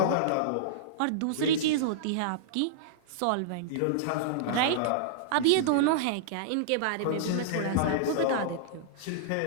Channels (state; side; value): different; both; correlation -0.02